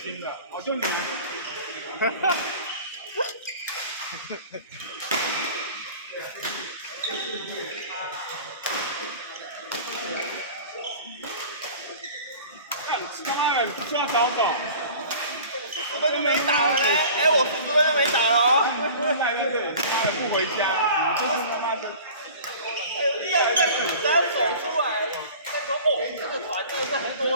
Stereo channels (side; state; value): both; inverted; correlation -0.42